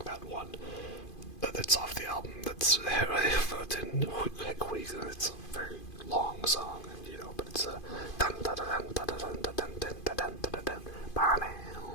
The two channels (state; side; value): late; right; 2.5 ms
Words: that one that's off the album. It's a very long song, you know, but it's a